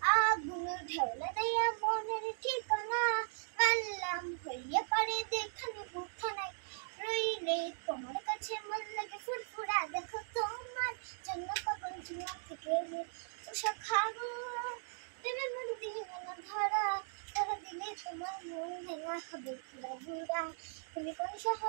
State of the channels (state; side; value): silent; left; digital silence